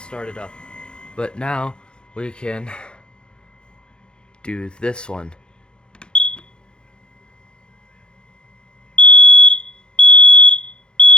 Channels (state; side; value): late; right; 0.050 ms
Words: started up, but now we can do this one.